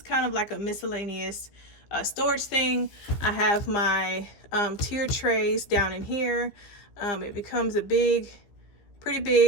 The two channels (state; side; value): late; right; 15 ms